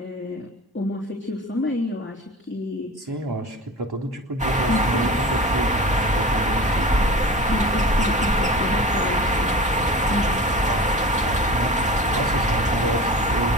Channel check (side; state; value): both; normal; correlation 0.35